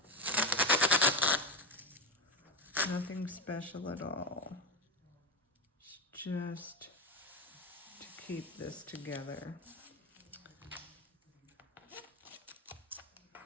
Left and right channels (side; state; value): both; normal; correlation 0.15